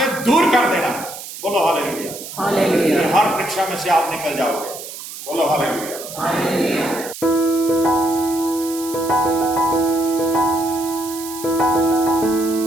दूर कर देना। बोलो हालेलुया, हालेलुया। हर परीक्षा में से आप निकल जाओगे। बोलो हालेलुया, हालेलुया।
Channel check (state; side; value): noise; right; hiss, 12 dB below the sound